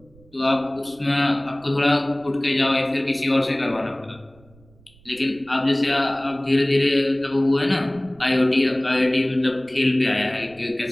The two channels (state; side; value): noise; right; rumble, 28 dB below the sound